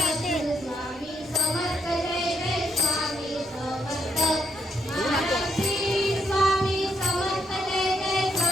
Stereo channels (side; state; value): both; normal; correlation 0.78